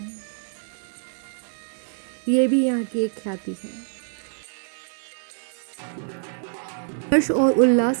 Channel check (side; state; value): left; silent; digital silence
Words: ये भी यहाँ की एक ख्याति है। हर्ष और